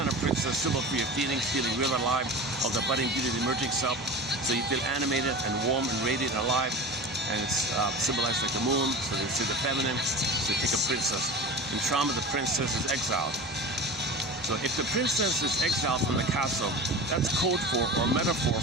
of princess, symbol for your feelings, feeling real alive, of the budding beauty, the emerging self. So you feel animated and warm and radiant and alive. And it's symbolized like the moon, so they say the feminine. So you take a princess. In trauma, the princess is exiled. So if the princess is exiled from the castle, that's code for, or metaphor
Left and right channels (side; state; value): both; normal; correlation 0.33